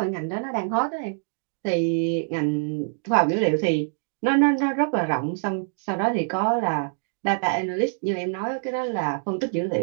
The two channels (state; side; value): silent; left; digital silence